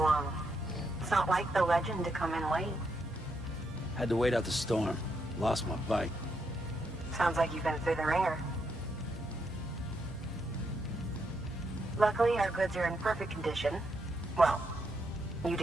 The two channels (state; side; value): normal; both; correlation 0.79